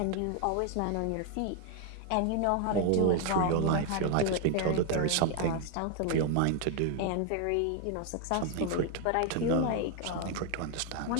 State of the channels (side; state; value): both; different; correlation 0.01